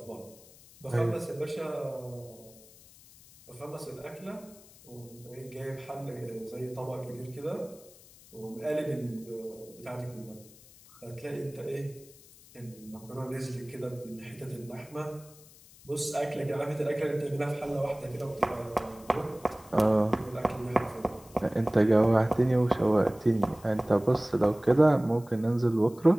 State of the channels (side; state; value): left; noise; hiss, 23 dB below the sound